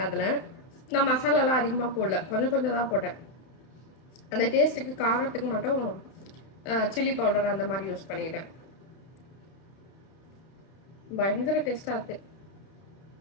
அதில் நான் மசாலாலாம் அதிகமாக போடல, கொஞ்சம் கொஞ்சம் தான் போட்டேன். அந்த டேஸ்ட்டுக்கு காரத்துக்கு மட்டும் சில்லி பவுடர் அந்த மாதிரி யூஸ் பண்ணிக்கிட்டேன். பயங்கர டேஸ்ட்டாக இருக்குது.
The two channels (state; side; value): late; right; 31 ms